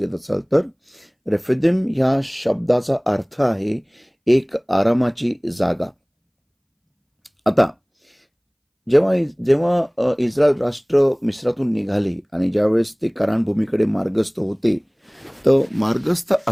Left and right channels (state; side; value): identical; both; correlation 1.00